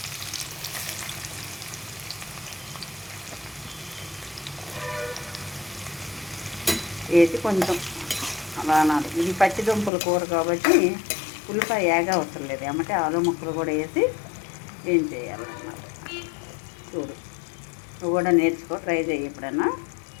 వేసి కొంచెం అలా అనాలి. ఇది పచ్చి దుంపల కూర కాబట్టి ఉల్లిపాయ ఏగా అవసరం లేదు. ఏమంటే ఆలు ముక్కలు కూడా వేసి ఏం చేయాలన్నమాట. చూడు, నువ్వు కూడా నేర్చుకో, ట్రై చేయి ఎప్పుడన్నా.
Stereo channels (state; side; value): drops out; right; at 9.9 s